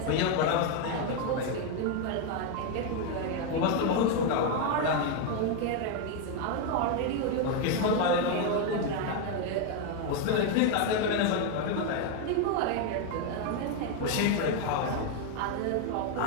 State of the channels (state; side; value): different; both; correlation 0.01